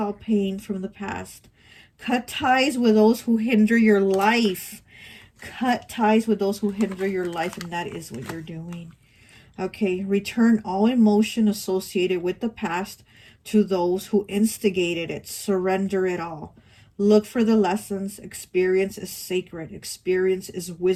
pain from the past. Cut ties with those who hinder your life. Cut ties with those who hinder your life, and that is what you're doing. Okay, return all emotion associated with the past to those who instigated it. Surrender it all. Look for the lessons. Experience is sacred. Experience is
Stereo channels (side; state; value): both; identical; correlation 1.00